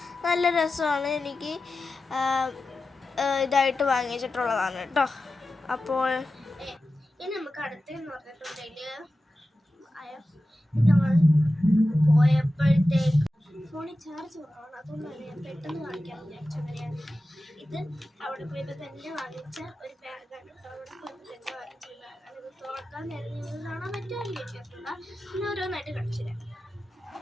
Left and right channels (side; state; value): both; normal; correlation 0.93